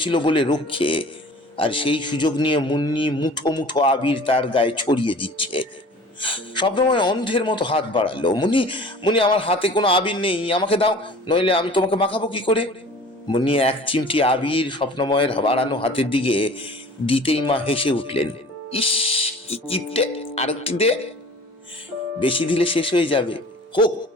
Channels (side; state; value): both; normal; correlation 0.45